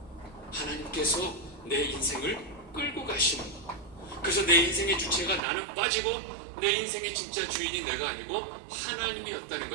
하나님께서 내 인생을 끌고 가시는 거. 그래서 내 인생의 주체가 나는 빠지고 내 인생의 진짜 주인이 내가 아니고 하나님이었다는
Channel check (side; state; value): left; drops out; at 5.4 s